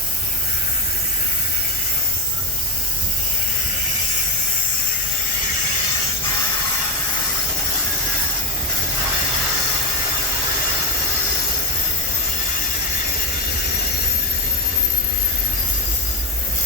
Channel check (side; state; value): both; normal; correlation 0.16